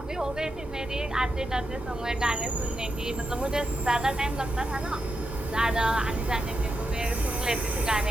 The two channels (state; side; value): normal; both; correlation 0.86